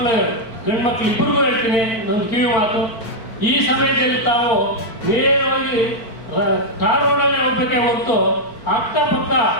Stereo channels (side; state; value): right; late; 4.4 ms